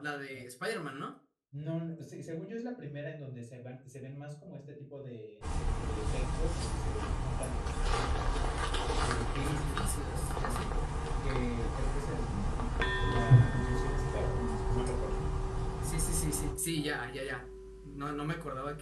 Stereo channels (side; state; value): both; identical; correlation 1.00